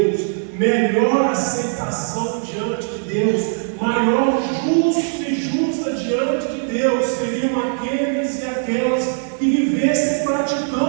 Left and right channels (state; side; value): silent; left; digital silence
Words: melhor aceitação diante de Deus, maior justo e justa diante de Deus seriam aqueles e aquelas que vivessem